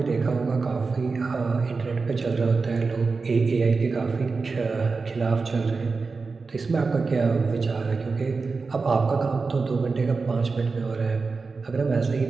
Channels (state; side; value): quieter; left; 4.3 dB